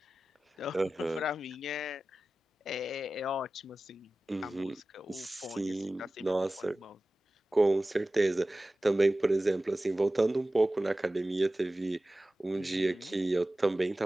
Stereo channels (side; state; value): both; normal; correlation 0.96